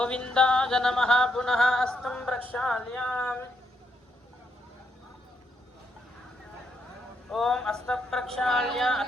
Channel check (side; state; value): both; normal; correlation 0.78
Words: నమః పునః హస్తం ప్రక్షాళ్యామి ఓం హస్త ప్రక్షాళ్య